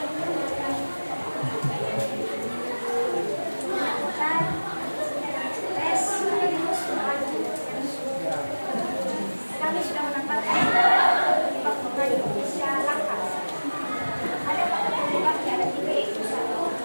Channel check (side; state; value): both; inverted; correlation -1.00